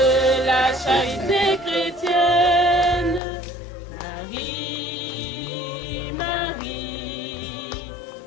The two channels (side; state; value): right; drops out; at 3.2 s